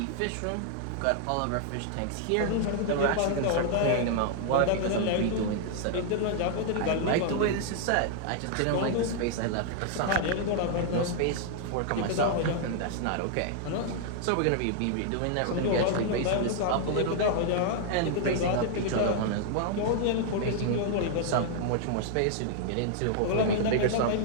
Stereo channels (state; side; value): different; both; correlation -0.01